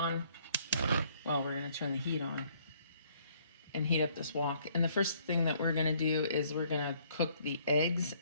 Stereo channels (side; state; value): both; inverted; correlation -0.64